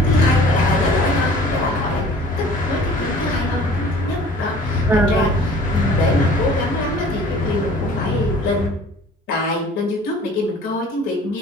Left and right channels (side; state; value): both; normal; correlation 0.48